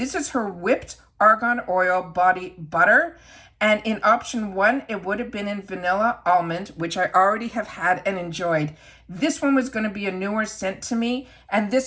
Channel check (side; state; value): both; identical; correlation 1.00